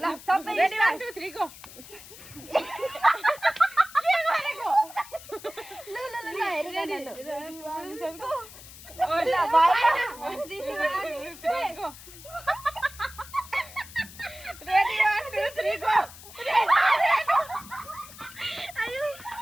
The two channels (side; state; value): left; noise; hiss, 17 dB below the sound